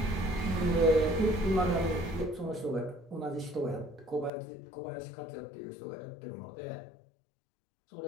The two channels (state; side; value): drops out; right; at 4.3 s